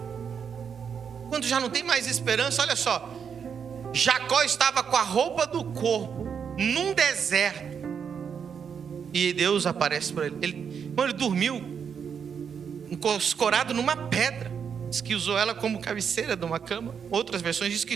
Quando já não tem mais esperança, olha só. Jacó estava com a roupa do corpo num deserto, e Deus aparece para ele. Ele dormiu escorado numa pedra. Diz que usou ela como cabeceira de uma cama. Outras versões dizem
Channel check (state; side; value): quieter; left; 7.1 dB